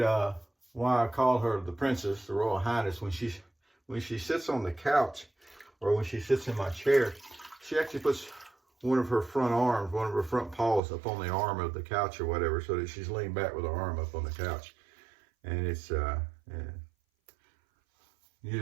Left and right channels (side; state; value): left; drops out; at 10.8 s